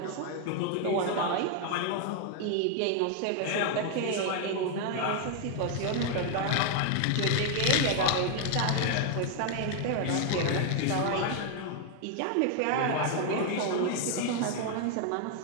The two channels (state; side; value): different; both; correlation 0.00